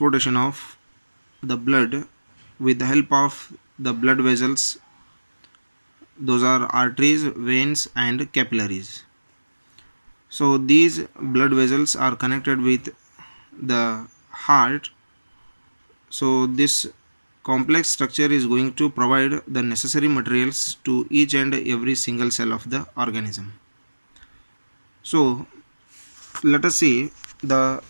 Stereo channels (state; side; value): inverted; both; correlation -1.00